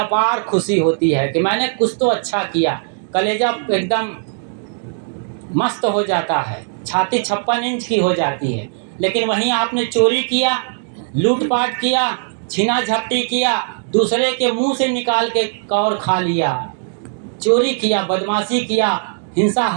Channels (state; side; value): silent; left; digital silence